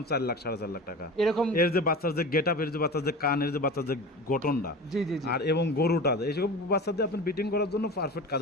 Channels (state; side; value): normal; both; correlation 0.33